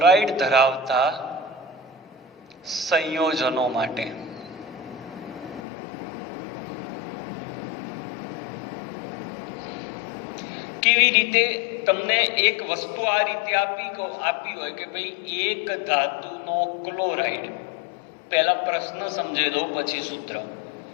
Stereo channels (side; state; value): right; drops out; at 5.6 s